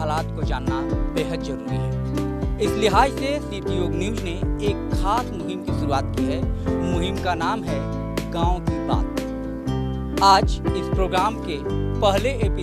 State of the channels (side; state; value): both; identical; correlation 1.00